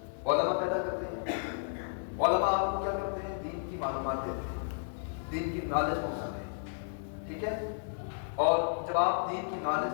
علماء پیدا کرتے ہیں. علماء آپ کو کیا کرتے ہیں؟ دین کی معلومات دیتے ہیں، دین کی نالج پہنچاتے ہیں. ٹھیک ہے؟ اور جب آپ دین کی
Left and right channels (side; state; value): right; silent; digital silence